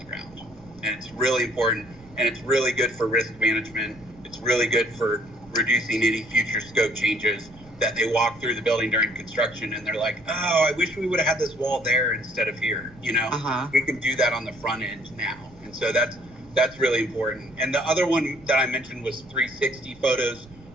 ground. And it's really important, and it's really good for risk management. It's really good for reducing any future scope changes, that they walk through the building during construction and they're like, oh, I wish we would have had this wall there instead of here. We can do that on the front end now. And so that's really important. And the other one that I mentioned was 360 photos.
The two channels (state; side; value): noise; right; rumble, 23 dB below the sound